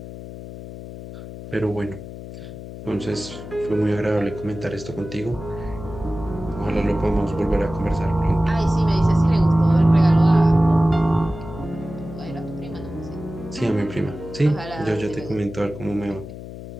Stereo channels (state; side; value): noise; left; hum, 12 dB below the sound